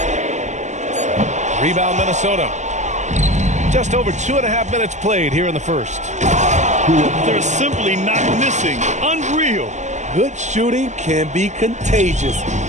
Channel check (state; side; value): late; left; 0.34 ms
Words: Rebound Minnesota. Just over 2.5 minutes played here in the first. They're simply not missing. Unreal. Good shooting can be contagious.